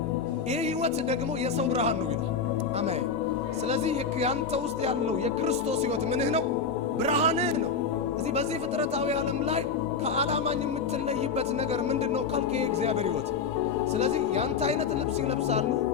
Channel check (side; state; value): right; quieter; 5.4 dB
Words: ይህ ህይወት ደግሞ የሰው ብርሃን ነው ይላል። አሜን። ስለዚህ ያንተ ውስጥ ያለው የክርስቶስ ህይወት ምንህ ነው? ብርሃንህ ነው። እዚህ በዚህ ፍጥረታዊ ዓለም ላይ ከዓላማኝ የምትለይበት ነገር ምንድነው ካልከ የእግዚአብሔር ህይወት። ስለዚህ ያንተ አይነት ልብስ ይለብሳሉ፣